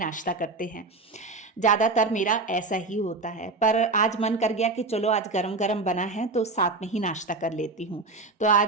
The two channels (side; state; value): left; quieter; 3.5 dB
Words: करते हैं। ज़्यादातर मेरा ऐसा ही होता है। पर आज मन कर गया कि चलो आज गरम गरम बना है तो साथ में ही नाश्ता कर लेती हूँ। तो